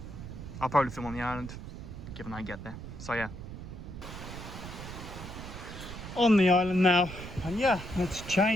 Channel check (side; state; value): right; noise; rumble, 10 dB below the sound